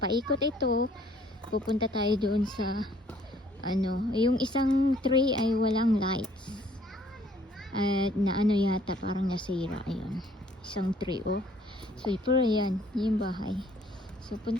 ito. Pupunta tayo doon sa yung isang tree ay walang lights. At na yata, parang nasira. Ayun. Isang tree, oh. So, pero yan, yung bahay. So,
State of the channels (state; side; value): normal; both; correlation 0.60